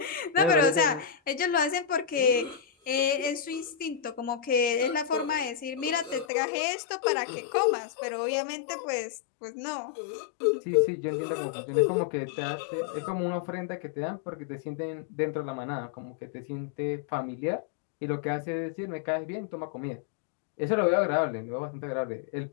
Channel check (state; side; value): drops out; right; at 6.2 s